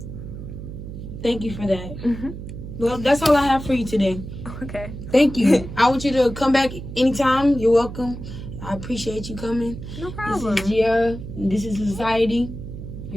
Thank you for that. Mm-hmm. Well, that's all I have for you today. Okay. Thank you. I want you to come back anytime. You're welcome. I appreciate you coming. No problem. This is Gia. This is Society.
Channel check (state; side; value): noise; right; hum, 10 dB below the sound